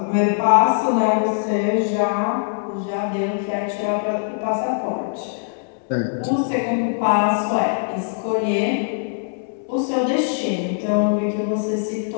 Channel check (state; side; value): silent; right; 64 dB below the other